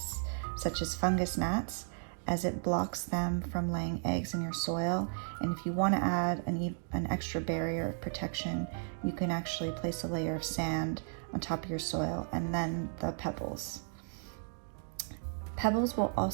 such as fungus gnats, as it blocks them from laying eggs in your soil. And if you want to add an extra barrier of protection, you can actually place a layer of sand on top of your soil and then the pebbles. Pebbles will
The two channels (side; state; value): left; silent; 55 dB below the other